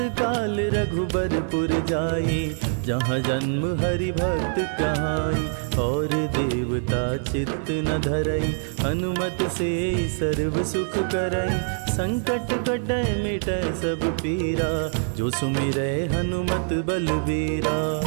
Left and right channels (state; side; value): silent; left; digital silence